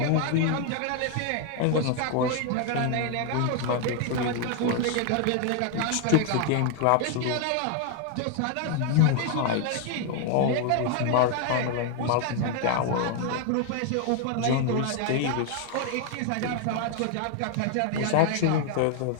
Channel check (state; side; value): different; both; correlation 0.00